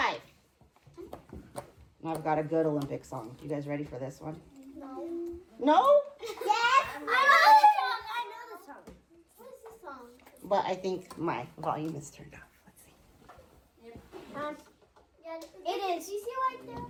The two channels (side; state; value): both; identical; correlation 1.00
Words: I've got a good Olympic song. You guys ready for this one? No. No? Yes. I know the song. I know the song. What is the song? But I think my volume is turned off. Let's see. Yeah, it is. You see right there?